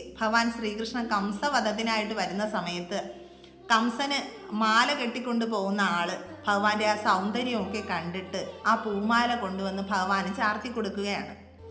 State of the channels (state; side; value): identical; both; correlation 1.00